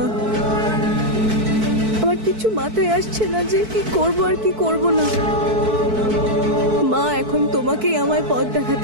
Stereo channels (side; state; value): left; late; 4.6 ms